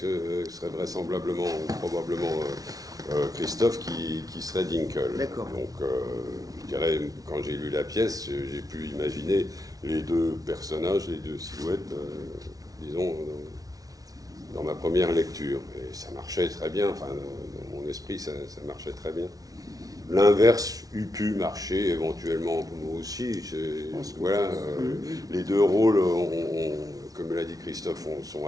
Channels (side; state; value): left; late; 0.18 ms